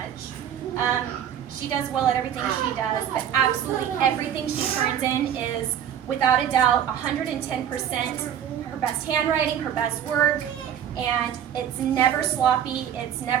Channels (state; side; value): quieter; left; 9.5 dB